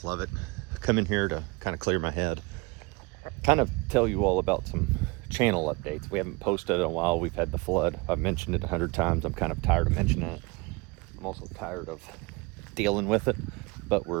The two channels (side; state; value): left; quieter; 26.4 dB